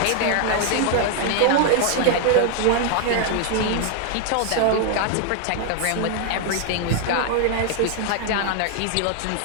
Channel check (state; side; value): different; both; correlation 0.00